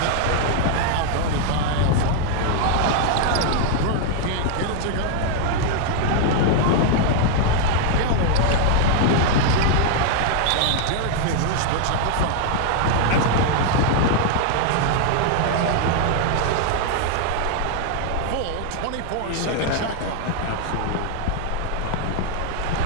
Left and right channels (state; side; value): different; both; correlation 0.00